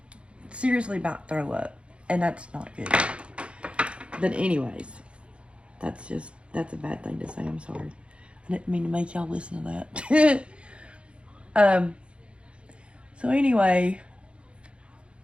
seriously about to throw up, and that's not good. But anyways, that's a bad thing to say. I'm sorry. I didn't mean to make y'all listen to that. So anyway,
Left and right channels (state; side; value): late; left; 0.058 ms